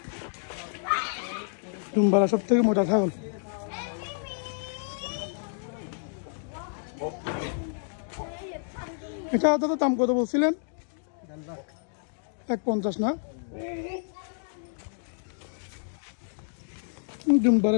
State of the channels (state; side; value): silent; right; digital silence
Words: ডুমবারা সব থেকে মোটা ছাগল। এটা দাদা দাম কত বলছিলেন? 150 না?